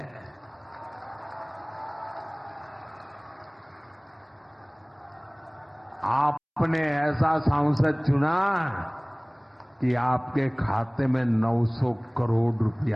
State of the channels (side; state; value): both; identical; correlation 1.00